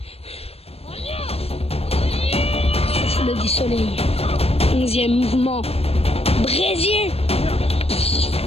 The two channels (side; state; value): right; late; 0.29 ms